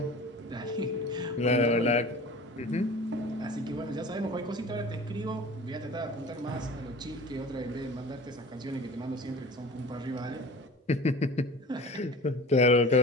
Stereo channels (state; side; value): normal; both; correlation 0.39